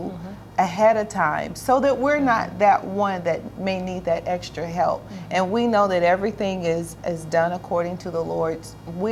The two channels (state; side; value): identical; both; correlation 1.00